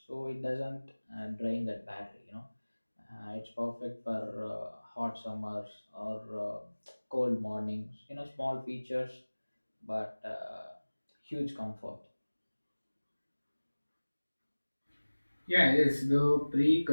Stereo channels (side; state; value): both; inverted; correlation -1.00